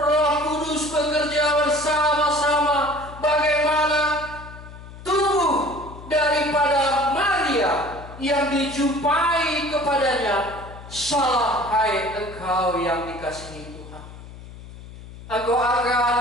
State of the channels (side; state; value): left; noise; hum, 16 dB below the sound